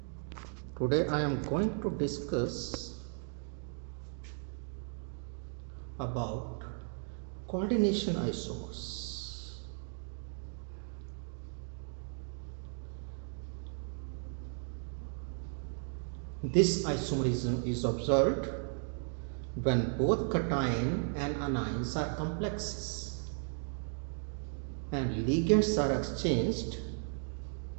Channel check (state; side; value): silent; left; 54 dB below the other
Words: Today, I am going to discuss about coordination isomers. This isomerism is observed when both cation and anions are complexes and ligands are exchanged